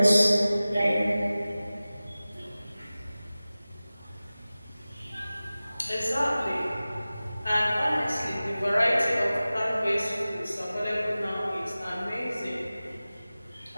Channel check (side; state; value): both; inverted; correlation -0.97